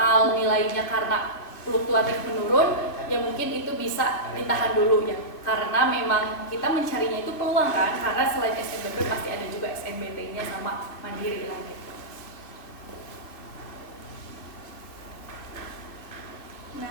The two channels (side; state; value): right; late; 2.5 ms